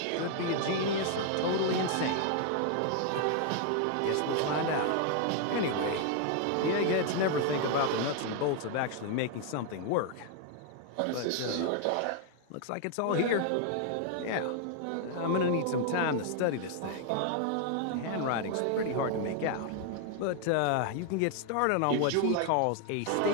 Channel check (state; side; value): different; both; correlation 0.00